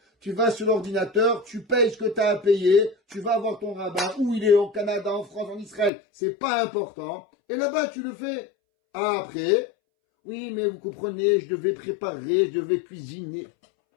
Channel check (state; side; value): drops out; right; at 5.9 s